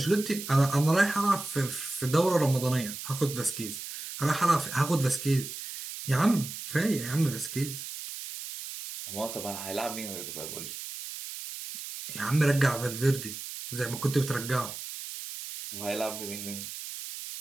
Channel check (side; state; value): right; noise; hiss, 9 dB below the sound